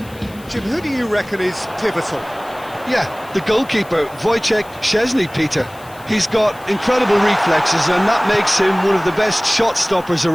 Jim, who do you reckon is pivotal? Yeah, the goalkeeper, Wojciech Szczesny, Peter. He's got incredible reflexes, and that makes him one of the best shot stoppers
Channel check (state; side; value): noise; left; hiss, 24 dB below the sound